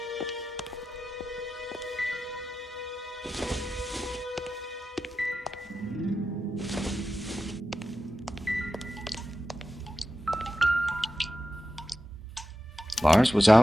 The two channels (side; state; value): both; normal; correlation 0.91